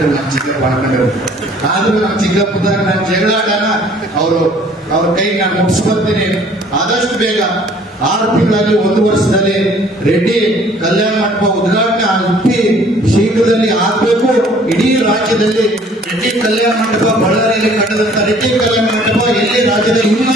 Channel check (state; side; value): normal; both; correlation 0.56